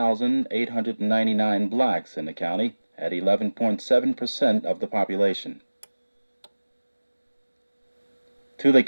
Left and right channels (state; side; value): inverted; both; correlation -1.00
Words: blacks in the county at 11.7% of the population. To the